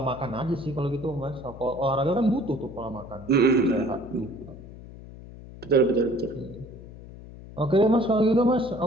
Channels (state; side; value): noise; left; hum, 16 dB below the sound